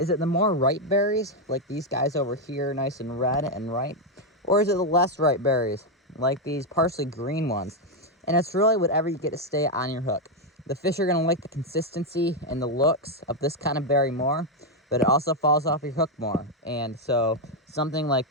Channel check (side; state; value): both; normal; correlation 0.03